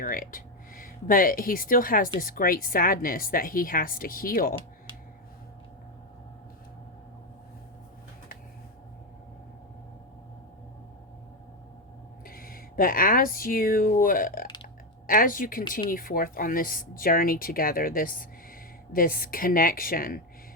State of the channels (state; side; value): normal; both; correlation 0.09